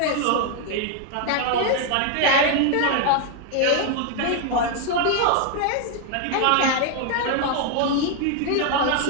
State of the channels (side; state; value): both; different; correlation 0.01